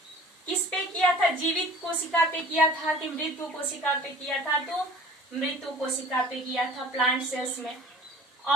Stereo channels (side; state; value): both; normal; correlation 0.46